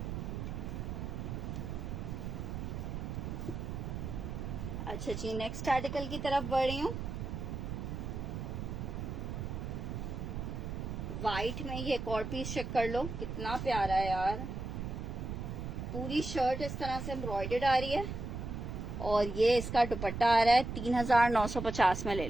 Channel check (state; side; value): noise; right; rumble, 5 dB below the sound